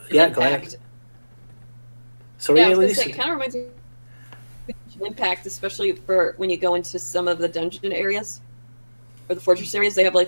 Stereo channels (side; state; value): both; inverted; correlation -1.00